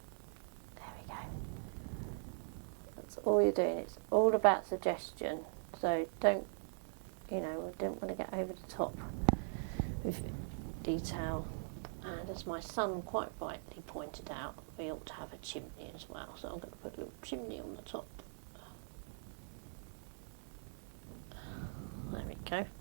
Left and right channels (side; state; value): left; silent; 50 dB below the other